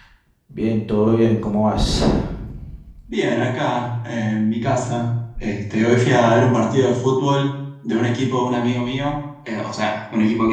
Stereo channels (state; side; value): identical; both; correlation 1.00